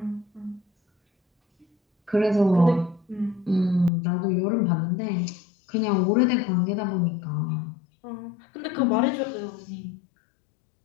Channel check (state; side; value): drops out; right; at 3.9 s